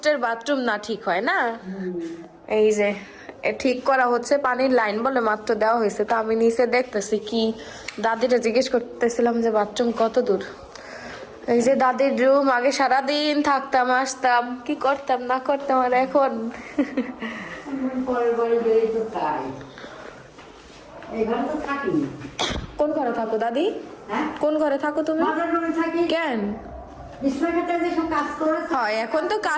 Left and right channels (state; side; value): identical; both; correlation 1.00